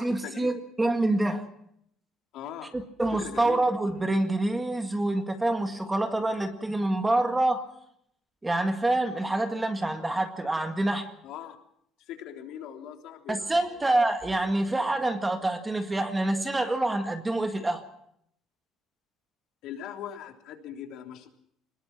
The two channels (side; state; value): both; normal; correlation 0.93